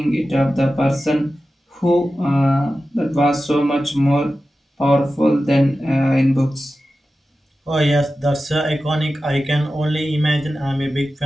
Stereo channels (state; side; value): normal; both; correlation 0.94